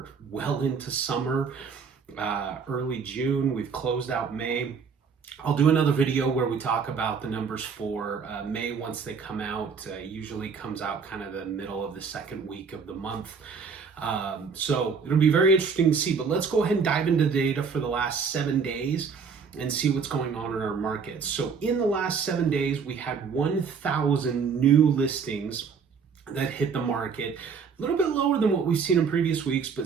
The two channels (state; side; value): quieter; left; 5.8 dB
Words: well into summer. Early June, we've closed out May. I'll do another video where we talk about the numbers for May once they come out. Usually comes out kind of the middle of the second week of the month. So it'll be very interesting to see, but let's go ahead and dive into the data for the last 7 days and see what's going on in our markets. So in the last 7 days, we had 1,000 new listings that hit the market. A little bit lower than what we've seen in previous weeks,